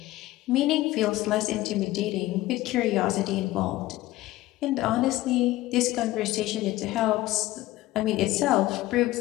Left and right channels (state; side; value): quieter; right; 17.0 dB